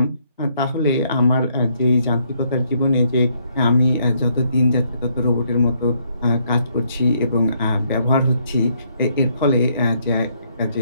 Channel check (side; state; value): both; inverted; correlation -0.71